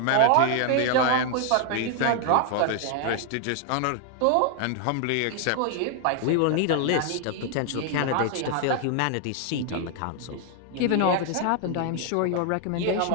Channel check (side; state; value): both; different; correlation 0.00